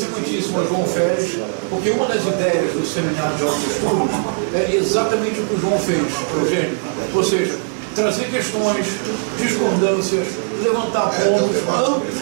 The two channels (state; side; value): silent; left; digital silence